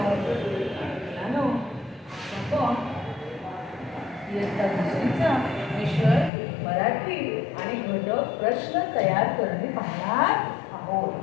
मुलांनो, आपण इयत्ता दुसरीचा विषय मराठी आणि घटक प्रश्न तयार करणे पाहणार आहोत.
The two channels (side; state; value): right; drops out; at 6.3 s